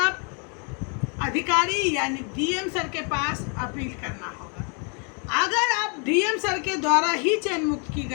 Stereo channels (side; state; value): right; quieter; 37.9 dB